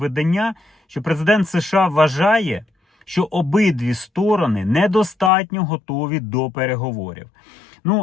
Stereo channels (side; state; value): right; drops out; at 5.3 s